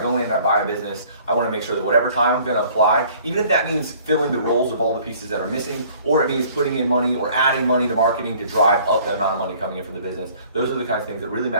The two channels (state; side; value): inverted; both; correlation -0.55